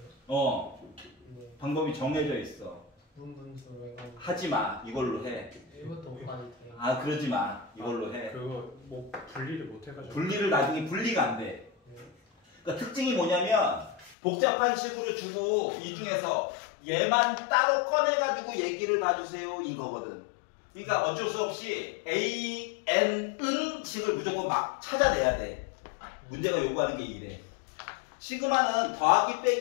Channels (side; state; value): right; drops out; at 14.2 s